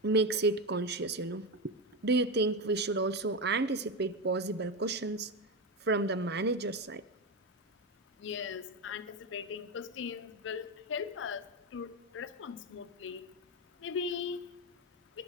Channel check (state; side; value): normal; both; correlation 0.14